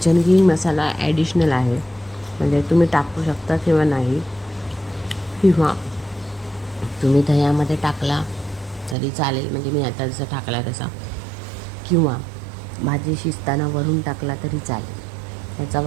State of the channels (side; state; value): left; drops out; at 9.0 s